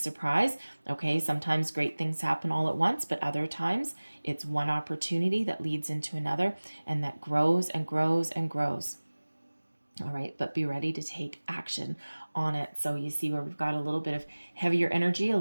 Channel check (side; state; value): both; inverted; correlation -1.00